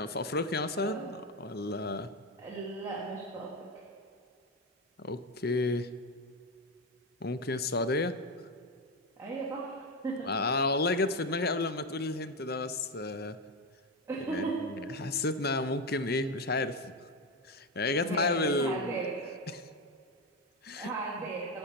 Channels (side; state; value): both; normal; correlation 0.13